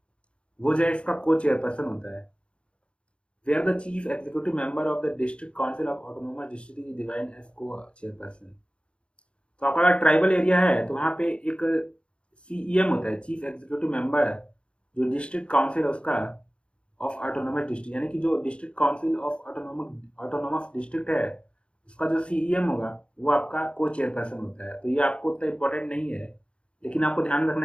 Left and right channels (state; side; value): late; right; 0.057 ms